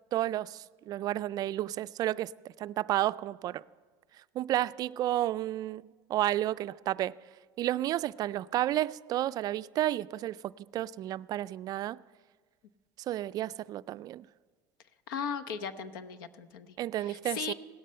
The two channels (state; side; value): quieter; left; 10.7 dB